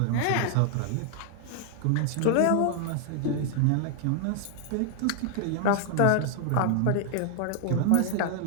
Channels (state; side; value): different; both; correlation 0.00